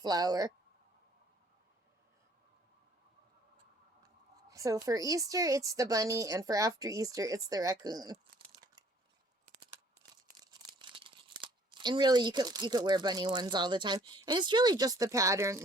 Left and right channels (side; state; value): both; normal; correlation 0.58